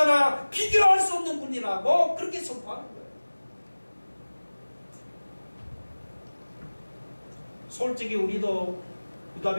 비교할 수 없는 분이라고 그렇게 선포하는 거예요. 솔직히 우리도 유다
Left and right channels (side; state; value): both; inverted; correlation -1.00